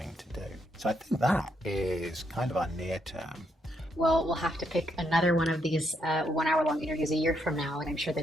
to do. So I think that is kind of our near term. Well, we'll have to pick another one of these 1 hour long interviews a year from now, and I'm sure the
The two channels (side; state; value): both; normal; correlation 0.77